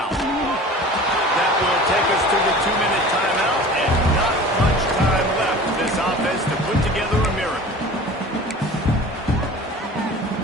That will take us to the 2-minute timeout, and not much time left for this offense to put together a miracle.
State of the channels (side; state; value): both; normal; correlation 0.40